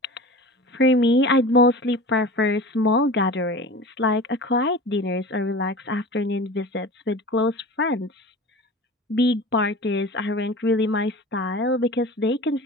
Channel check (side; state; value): both; normal; correlation 0.35